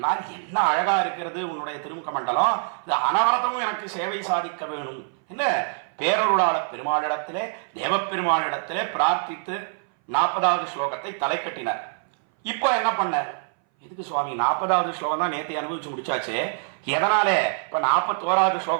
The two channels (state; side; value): silent; left; 60 dB below the other